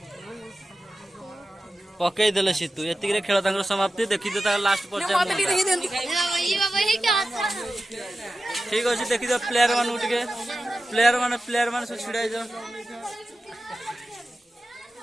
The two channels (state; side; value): normal; both; correlation 0.93